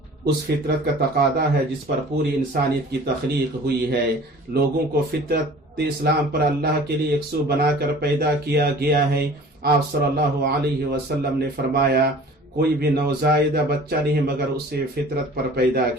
اس فطرت کا تقاضا ہے جس پر پوری انسانیت کی تخلیق ہوئی ہے۔ لوگوں کو فطرت اسلام پر اللہ کے لیے یکسو بنا کر پیدا کیا گیا ہے۔ آپ صلی اللہ علیہ وسلم نے فرمایا، کوئی بھی نوزائیدہ بچہ نہیں مگر اسے فطرت پر پیدا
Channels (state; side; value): normal; both; correlation 0.45